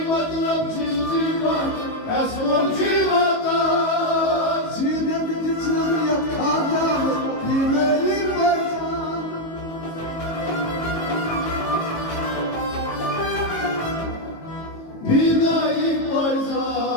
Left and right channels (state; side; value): late; right; 18 ms